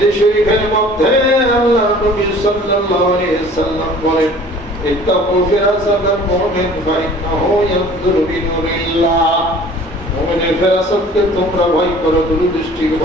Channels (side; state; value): both; normal; correlation 0.49